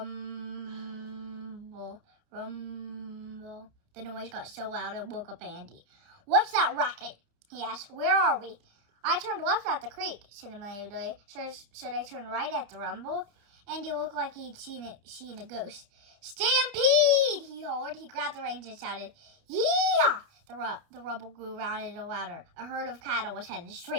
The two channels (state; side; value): late; left; 30 ms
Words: rumble. The noise got so loud it woke up Andy. "What's that racket?" he asked. "Where are we?" "I turned left at the creek," said Amelia Bedelia. "Should I turn right at the rumble?" Andy looked like he'd seen a ghost. "Stampede!" he hollered. He grabbed the reins and shouted, "Yeah!" The rumble grew louder and louder. A herd of cattle was headed